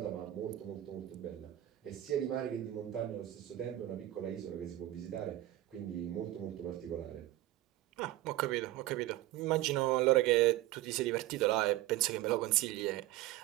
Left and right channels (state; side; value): quieter; left; 15.3 dB